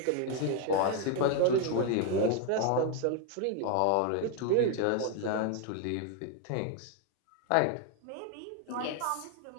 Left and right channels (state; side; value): different; both; correlation 0.01